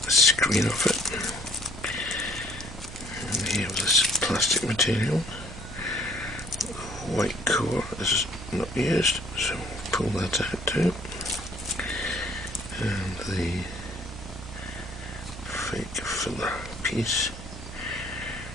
screen off it, and here this plastic material. White core is not used, so we'll pull that out too. And the fake filler piece,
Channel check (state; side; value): noise; right; hum, 12 dB below the sound